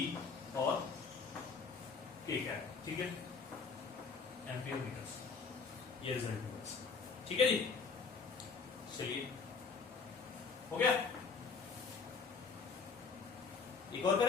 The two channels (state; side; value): quieter; right; 5.0 dB